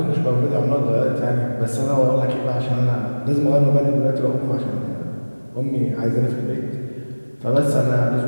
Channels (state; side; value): inverted; both; correlation -1.00